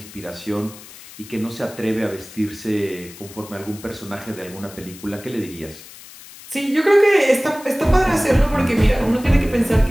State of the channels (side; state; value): left; noise; hiss, 18 dB below the sound